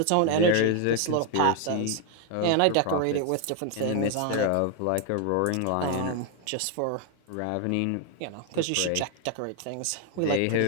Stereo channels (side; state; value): both; different; correlation 0.00